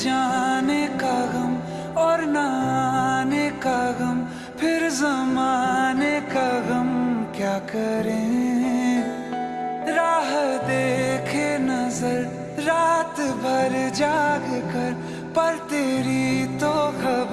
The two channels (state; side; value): identical; both; correlation 1.00